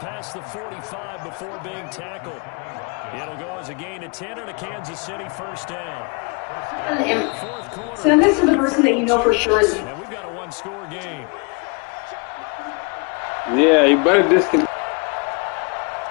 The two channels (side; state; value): right; quieter; 33.4 dB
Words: the 45 before being tackled. It'll go as a gain of 10 and a Kansas City first down. Fourth quarter. Send this to the person that you know for sure is. And we've got a one-score game. Yeah, you better disconnect.